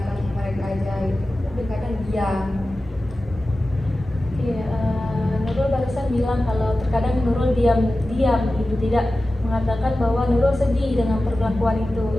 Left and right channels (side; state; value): both; normal; correlation 0.95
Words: mereka aja gitu. Tapi kadang diam. Oke, Nurul barusan bilang kalau terkadang Nurul diam gitu, tidak mengatakan bahwa Nurul sedih dengan perlakuan